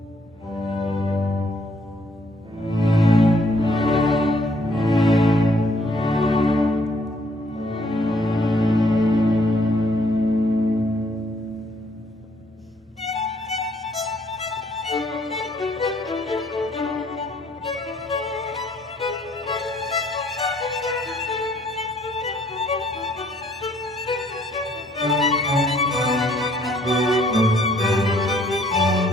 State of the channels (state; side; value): normal; both; correlation 0.66